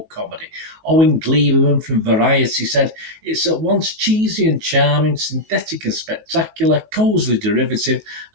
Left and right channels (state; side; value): late; left; 19 ms